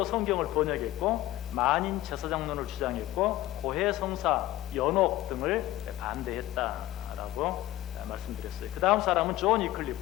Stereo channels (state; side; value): quieter; right; 15.8 dB